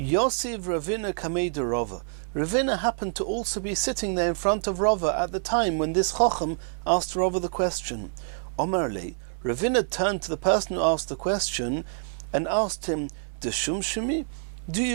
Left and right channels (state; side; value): silent; left; 60 dB below the other